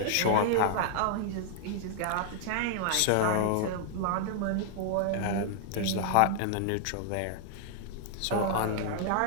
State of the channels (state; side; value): different; both; correlation -0.01